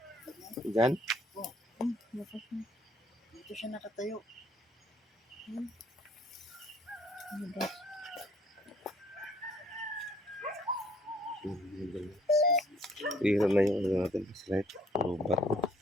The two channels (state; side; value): normal; both; correlation 0.61